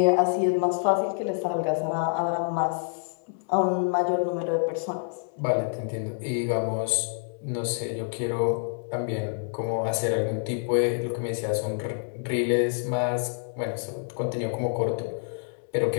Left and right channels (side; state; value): right; silent; 60 dB below the other